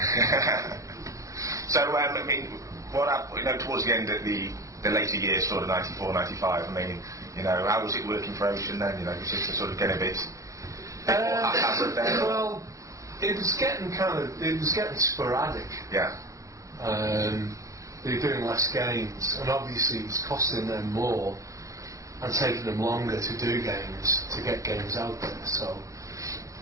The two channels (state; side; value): late; left; 0.16 ms